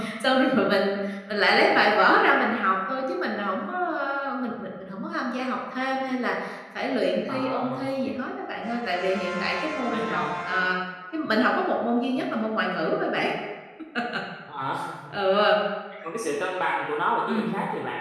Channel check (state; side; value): identical; both; correlation 1.00